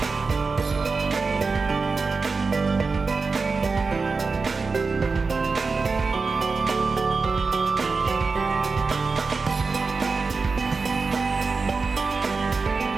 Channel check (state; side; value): quieter; left; 4.4 dB